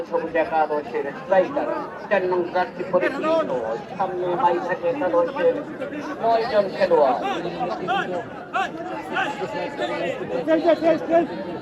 সবুজ একাদশের স্ট্রাইকার 4 নং জার্সি পরিহিত সামনে মাইঝাটি একাদশের 9 জন খেলোয়াড়।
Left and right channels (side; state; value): both; identical; correlation 1.00